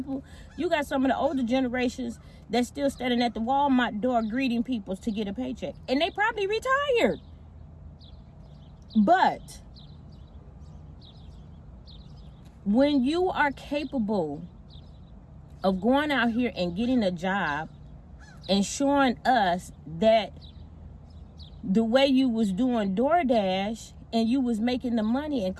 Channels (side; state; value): both; identical; correlation 1.00